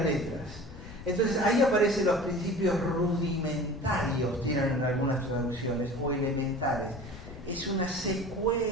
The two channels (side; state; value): left; noise; rumble, 14 dB below the sound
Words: letras. Entonces ahí aparecen los principios rudimentarios, tienen en algunas traducciones, o elementales. Es una